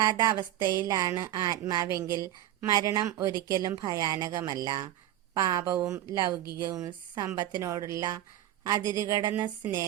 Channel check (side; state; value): left; quieter; 13.0 dB